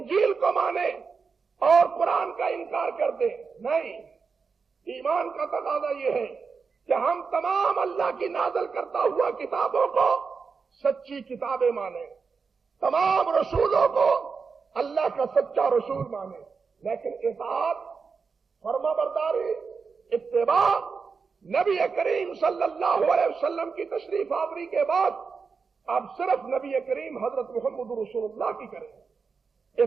کو مانے اور قرآن کا انکار کر دے. نہیں، ایمان کا تقاضا یہ ہے کہ ہم تمام اللہ کی نازل کرتا ہوا کتابوں کو سچی کتابیں مانیں، تمام رسولوں کو اللہ کا سچا رسول مانیں، لیکن اطاعت، فرما برداری، اتباع نبی کریم صلی اللہ علیہ وسلم کی تشریف آوری کے بعد اب صرف نبی کریم حضرت محمد رسول اللہ کی کریں.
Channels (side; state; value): left; quieter; 5.2 dB